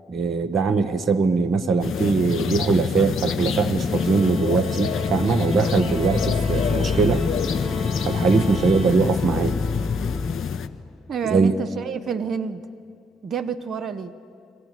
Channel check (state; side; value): normal; both; correlation 0.71